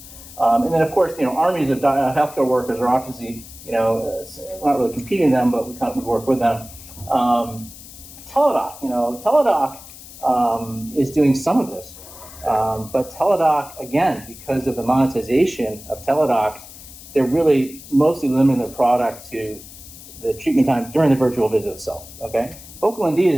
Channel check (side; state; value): left; noise; hiss, 17 dB below the sound